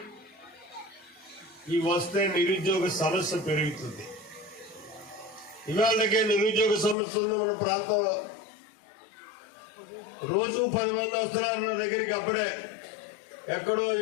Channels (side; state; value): right; drops out; at 7.0 s